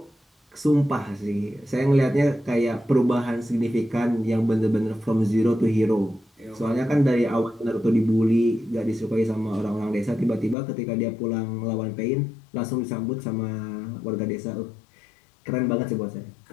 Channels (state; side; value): drops out; right; at 10.6 s